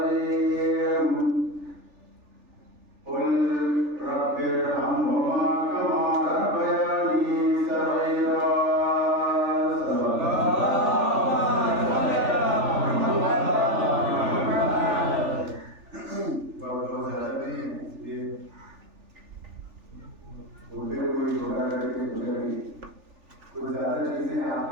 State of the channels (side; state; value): left; late; 3.4 ms